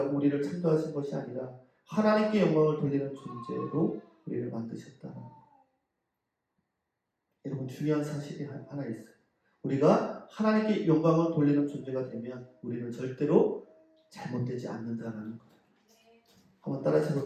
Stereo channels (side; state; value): both; identical; correlation 1.00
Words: 우리를 창조하신 것이 아니라 하나님께 영광을 돌리는 존재로 우리를 만드셨다는 거. 여러분, 중요한 사실이 하나 있어요. 우리가 하나님께 영광을 돌리는 존재가 되면 우리는 절대로 잘못되지 않는다는 거예요. 한번 따라서